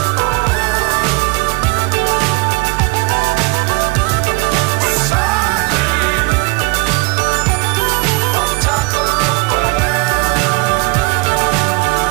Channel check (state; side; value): quieter; left; 27.2 dB